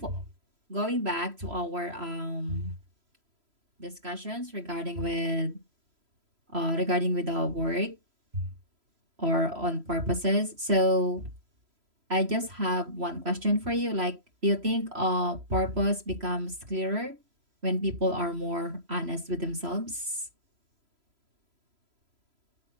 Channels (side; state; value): left; late; 3.0 ms